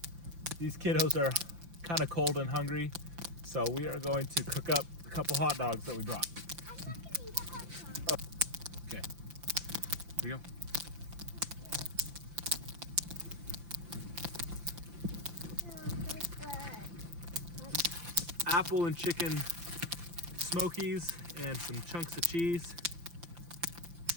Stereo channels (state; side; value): late; left; 5.8 ms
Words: these kiddos are kind of cold and hungry, so we are going to cook up a couple hot dogs that we brought. I'm not gonna eat a hot dog. Okay, here you go. No, this good. Apple and chicken smokies and some chunks of cheese.